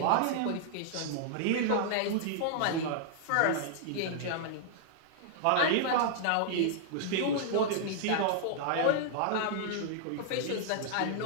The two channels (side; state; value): both; different; correlation -0.01